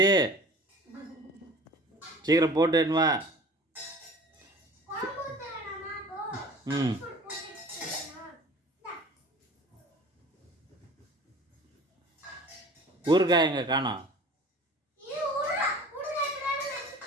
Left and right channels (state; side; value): normal; both; correlation 0.43